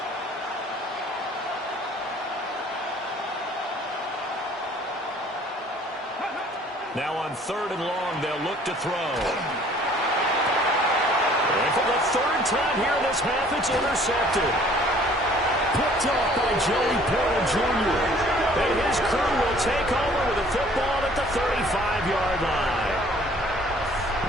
on 3rd and long, they'll look to throw. And for the 3rd time here in this half, it's intercepted. Picked off by Joey Porter Jr. And his crew will take over with the football at the 35-yard line.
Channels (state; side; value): normal; both; correlation 0.55